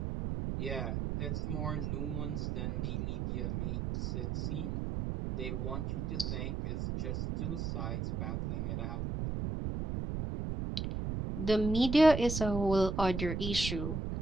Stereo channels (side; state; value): right; noise; rumble, 2 dB below the sound